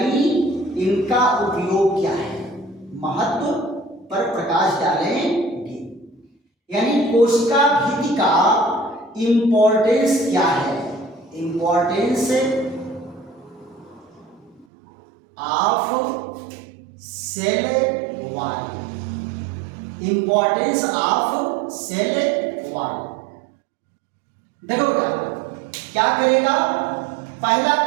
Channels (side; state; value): left; drops out; at 14.7 s